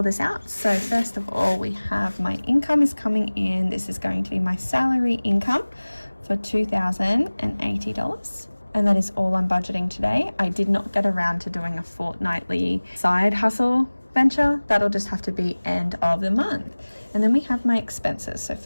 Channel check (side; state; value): both; inverted; correlation -1.00